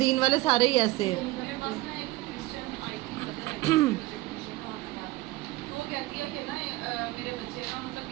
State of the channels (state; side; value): quieter; left; 19.2 dB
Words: والے سارے ہی ایسے ہیں. میرے پاس نا ایک کرسچن آئی تھی مدر وہ کہتی ہے کہ نا میرے بچے نا مطلب